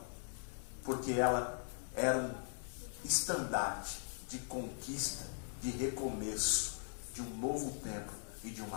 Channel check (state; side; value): silent; right; digital silence